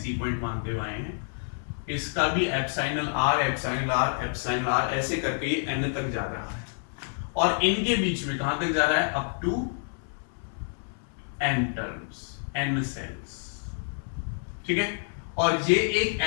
पॉइंट मानते हुए आए हैं। इसका भी epsilon R, epsilon R, epsilon R, ऐसे करके ये n तक जा रहा है और इनके बीच में कहां तक जा रहा है, up to n terms, n cells. ठीक है, और ये एक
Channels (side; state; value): right; silent; 59 dB below the other